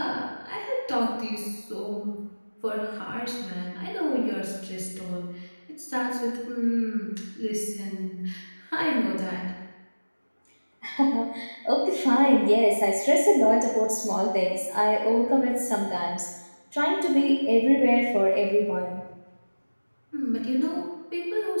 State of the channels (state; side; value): inverted; both; correlation -1.00